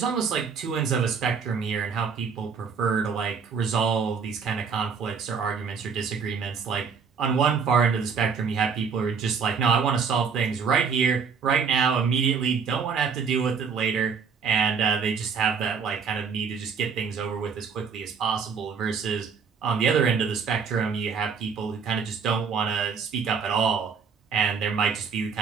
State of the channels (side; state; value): left; quieter; 6.0 dB